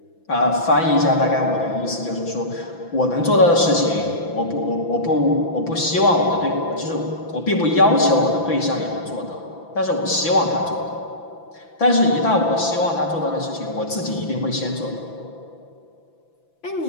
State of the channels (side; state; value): right; late; 6.0 ms